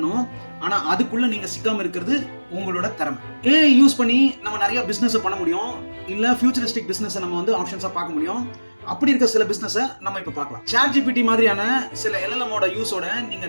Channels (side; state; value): both; inverted; correlation -1.00